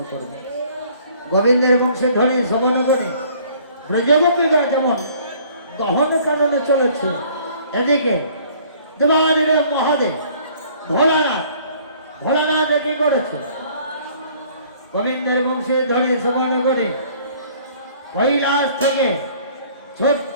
করবে। গোবিন্দের বংশে ধ্বনি শ্রবণ করে ব্রজগোপীরা যেমন দহন কারণে চলেছে, এদিকে দেবাদিদেব মহাদেব ভোলানাথ ভোলানাথ কি করেছে? গোবিন্দের বংশে ধ্বনি শ্রবণ করে কৈলাস থেকে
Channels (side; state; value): both; inverted; correlation -0.56